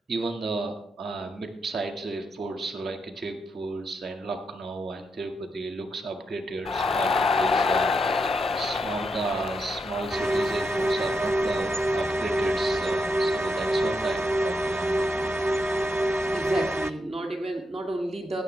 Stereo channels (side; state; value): both; normal; correlation 0.82